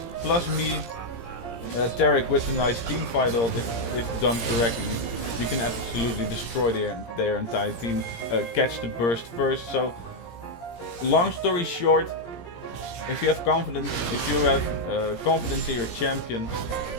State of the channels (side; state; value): right; late; 17 ms